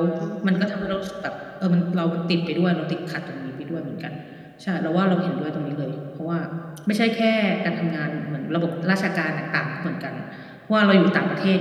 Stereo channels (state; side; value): identical; both; correlation 1.00